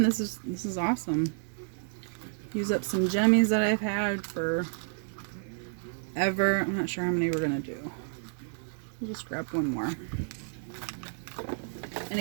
this is awesome. Use up some jemmies that I've had for ever. I'm not sure how many we're gonna do. We'll just grab one more. And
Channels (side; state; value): left; silent; 57 dB below the other